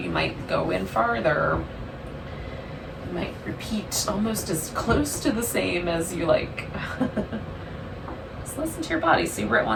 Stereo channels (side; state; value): both; identical; correlation 1.00